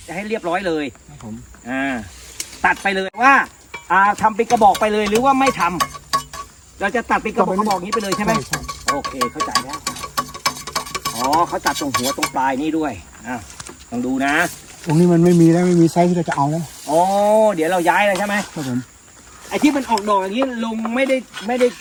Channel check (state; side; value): identical; both; correlation 1.00